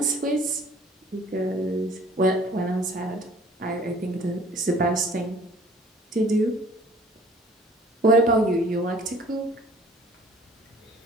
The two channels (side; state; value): both; normal; correlation 0.52